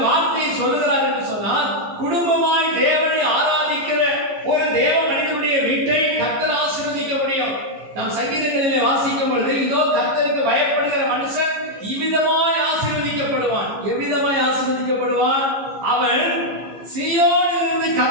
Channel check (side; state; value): left; late; 15 ms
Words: வார்த்தையை சொல்லுகிறார் என்று சொன்னால், குடும்பமாய் தேவனை ஆராதிக்கிற ஒரு தேவ மனிதனுடைய வீட்டை கர்த்தர் ஆசீர்வதிக்க முடியும். நாம் சங்கீதங்களிலே வாசிக்கும் பொழுது, இதோ கர்த்தருக்கு பயப்படுகிற மனுஷன் இவ்விதமாய் ஆசீர்வதிக்கப்படுவான். எவ்விதமாய் ஆசீர்வதிக்கப்படுவான்? அவன் சீயோனிலிருந்து